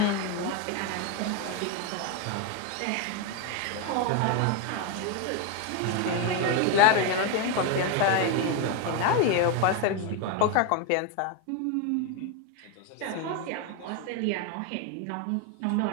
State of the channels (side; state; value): both; different; correlation 0.02